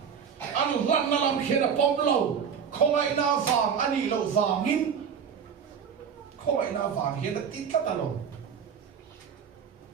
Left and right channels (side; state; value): left; quieter; 7.2 dB